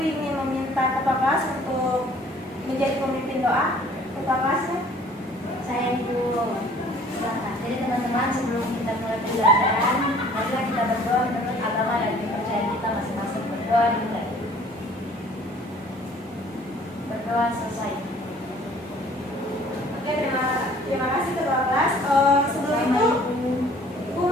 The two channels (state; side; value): normal; both; correlation 0.54